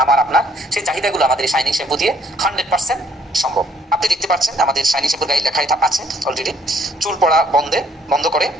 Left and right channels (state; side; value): normal; both; correlation 0.64